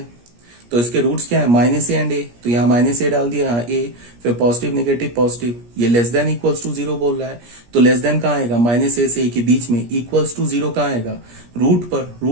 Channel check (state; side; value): late; left; 17 ms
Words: तो इसके रूट्स क्या है, -a एंड a, तो यहाँ -a डाल दिया, यहाँ a, फिर पॉजिटिव नेगेटिव पॉजिटिव, ये लेस देन इक्वल्स टू 0 बोल रहा है, तो लेस देन कहाँ आएगा, -a से a के बीच में, इक्वल्स टू 0 कहाँ आएगा, रूट पर।